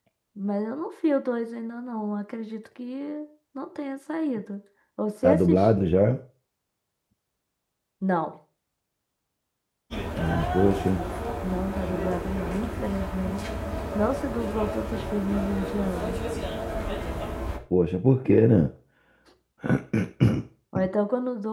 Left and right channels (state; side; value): identical; both; correlation 1.00